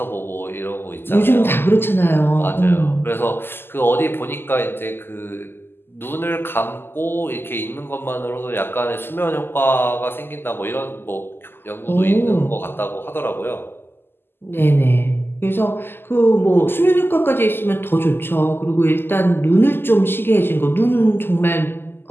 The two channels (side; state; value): right; late; 0.11 ms